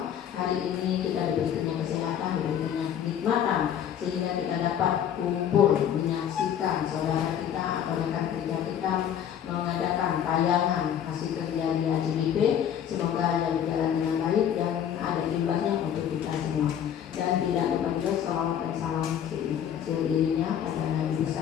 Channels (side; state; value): right; quieter; 9.4 dB